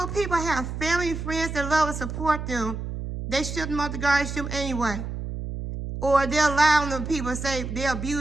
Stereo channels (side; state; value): right; noise; hum, 6 dB below the sound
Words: people have family and friends that love and support them, they ship them off to guardianship anyway. Or they'll lie on them people and say they're